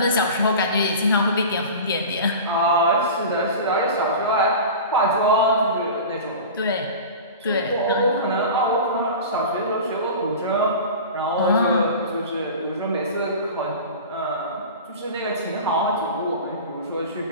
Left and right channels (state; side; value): inverted; both; correlation -0.33